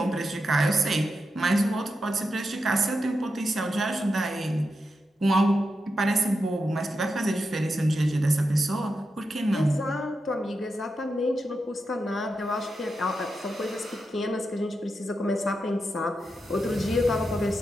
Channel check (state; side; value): normal; both; correlation 0.87